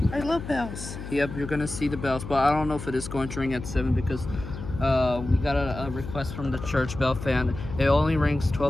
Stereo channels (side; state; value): left; noise; hum, 10 dB below the sound